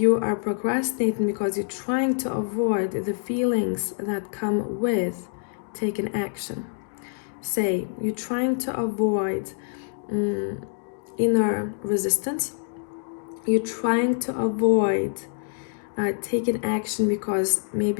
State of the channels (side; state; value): right; silent; 61 dB below the other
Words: are procrastinating because you're trying to avoid the feelings that come with taking action. Say, you're trying to avoid inner resistance. You're trying to avoid taking action because